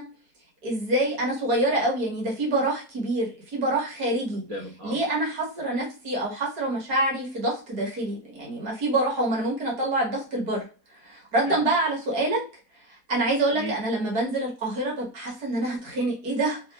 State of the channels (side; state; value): left; late; 4.1 ms